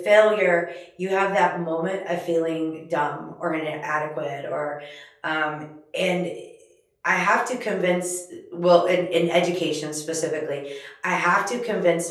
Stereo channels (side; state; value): both; identical; correlation 1.00